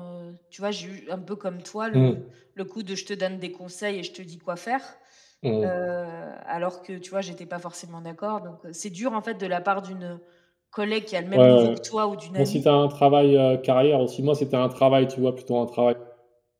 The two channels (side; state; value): both; identical; correlation 1.00